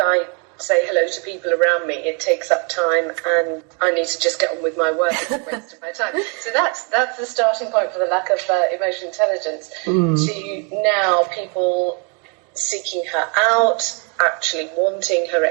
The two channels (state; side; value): quieter; left; 36.1 dB